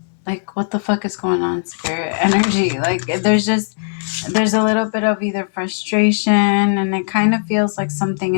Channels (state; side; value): silent; right; digital silence